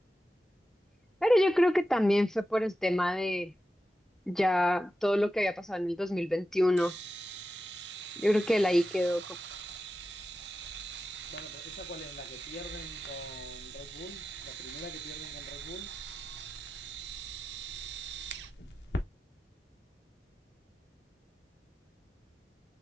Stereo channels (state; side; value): normal; both; correlation 0.92